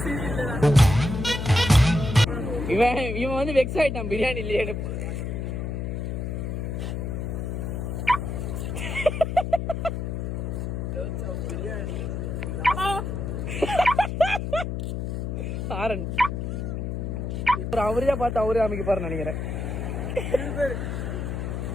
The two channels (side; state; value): left; noise; hum, 3 dB below the sound